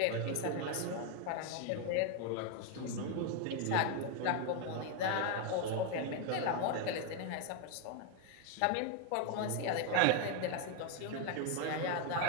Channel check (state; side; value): different; both; correlation 0.01